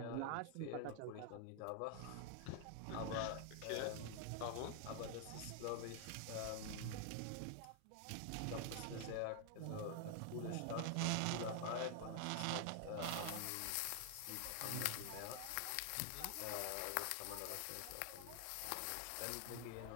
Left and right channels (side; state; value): both; different; correlation 0.00